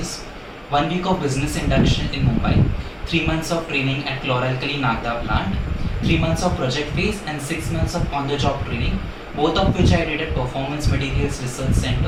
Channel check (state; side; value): identical; both; correlation 1.00